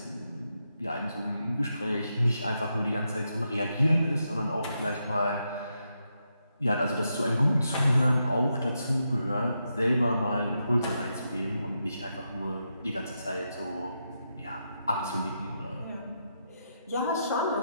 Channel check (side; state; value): both; inverted; correlation -0.84